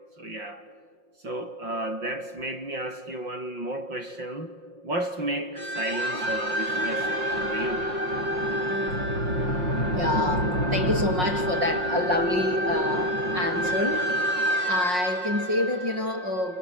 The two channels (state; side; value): late; left; 5.5 ms